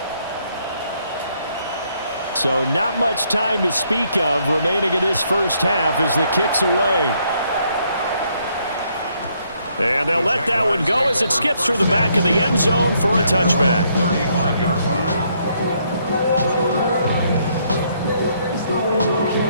So not much time to speak of remaining in this first half as the kick's away. And they'll let that one go as it skips through the back of the end zone for a touchback. 35-yard line.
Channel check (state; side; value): inverted; both; correlation -0.71